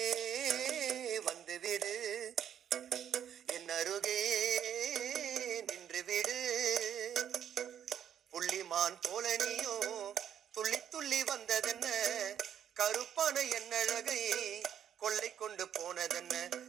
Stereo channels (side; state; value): left; quieter; 9.4 dB